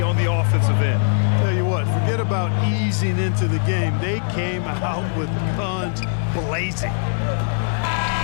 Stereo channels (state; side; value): silent; right; digital silence